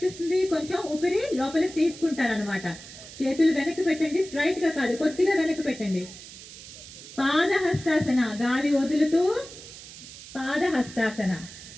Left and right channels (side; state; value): right; noise; hiss, 15 dB below the sound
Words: కొంచెం ఊపిరి లోపలికి తీసుకుంటారు అనమాట. చేతులు వెనక్కి పెట్టండి, స్ట్రైట్ గా కాదు, కొద్దిగా వెనక్కి పెట్టండి. పాదహస్తాసన, గాలి వదులుతూ పాదహస్తాసన,